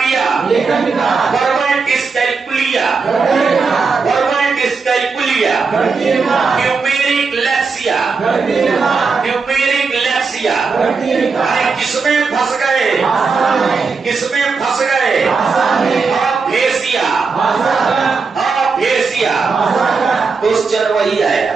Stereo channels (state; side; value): quieter; left; 4.8 dB